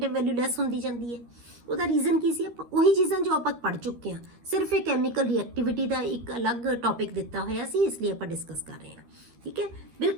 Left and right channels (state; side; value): late; left; 13 ms